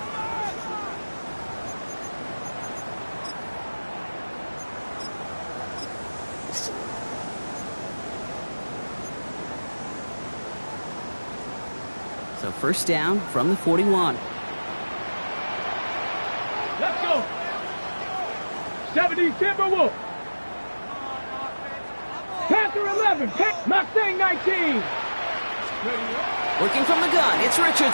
So 1st down from the 41. Let's go. 70 Timberwolves. Panther 11. Mustang 19. Working from the gun, it's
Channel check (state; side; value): inverted; both; correlation -1.00